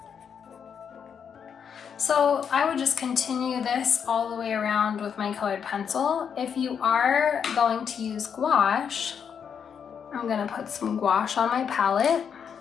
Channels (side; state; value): right; quieter; 7.3 dB